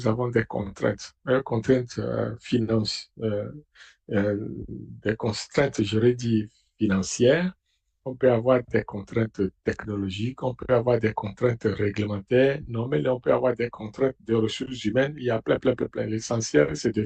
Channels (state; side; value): identical; both; correlation 1.00